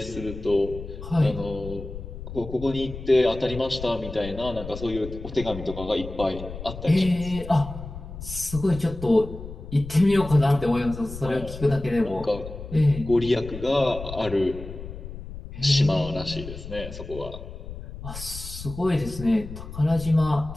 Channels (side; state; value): left; noise; rumble, 11 dB below the sound